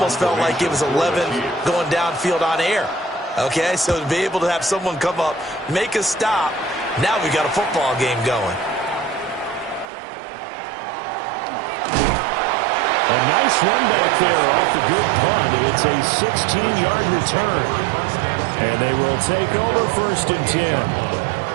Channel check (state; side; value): drops out; left; at 9.9 s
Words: felt like it was 11 going downfield on air. Okay, so to be able to have someone come up, make a stop, now we got a football game going. A nice run back there off the good punt. It's a 16-yard return. And they will take over 1st and 10.